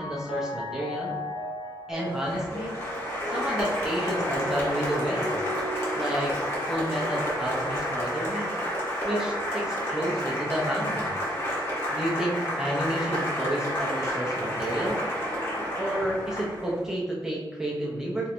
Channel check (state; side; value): normal; both; correlation 0.67